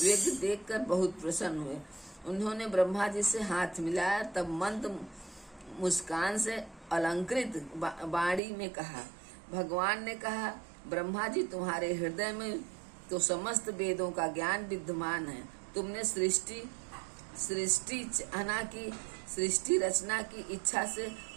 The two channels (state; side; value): drops out; left; at 8.4 s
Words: देखकर बहुत प्रसन्न हुए। उन्होंने ब्रह्मा जी से हाथ मिलाया, तब मंद मुस्कान से अलंकृत वाणी में कहा। भगवान ने कहा, ब्रह्मा जी, तुम्हारे हृदय में तो समस्त वेदों का ज्ञान विद्यमान है। तुमने सृष्टि रचना की इच्छा से